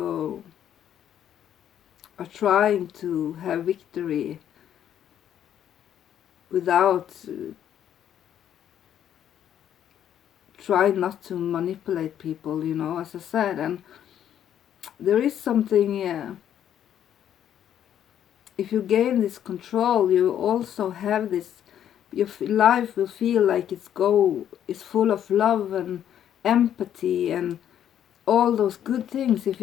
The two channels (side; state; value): right; quieter; 10.1 dB